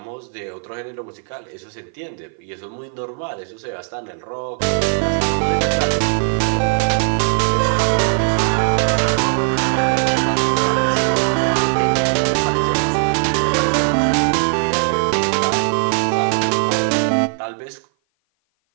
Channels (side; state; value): left; silent; 56 dB below the other